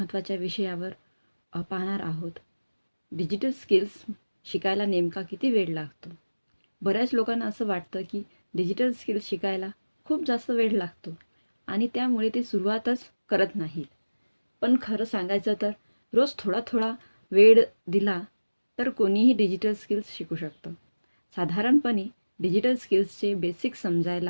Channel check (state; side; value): inverted; both; correlation -1.00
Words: विषयावर पाहणार आहोत. डिजिटल स्किल्स शिकायला नेमका किती वेळ लागतो? बऱ्याच लोकांना असं वाटतं की डिजिटल स्किल्स शिकायला खूप जास्त वेळ लागतो आणि त्यामुळे ते सुरुवातच करत नाहीत. पण खरं सांगायचं तर रोज थोडा थोडा वेळ दिला तर कोणीही डिजिटल स्किल्स शिकू शकतं. साधारणपणे डिजिटल स्किल्सचे बेसिक